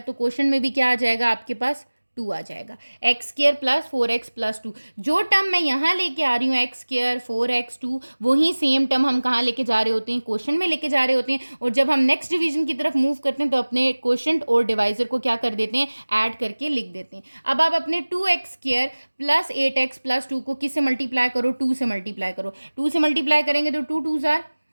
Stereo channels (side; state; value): both; inverted; correlation -1.00